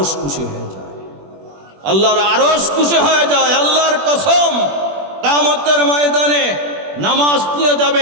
খুশি হয়ে যায়, আল্লাহর আরশ খুশি হয়ে যায়। আল্লাহর কসম, কিয়ামতের ময়দানে নামাজ নিয়ে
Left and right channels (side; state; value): left; late; 21 ms